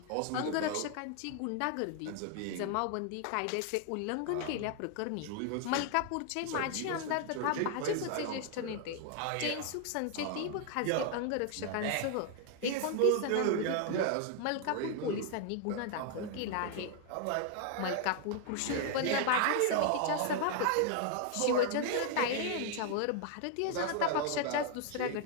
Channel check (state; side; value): different; both; correlation 0.00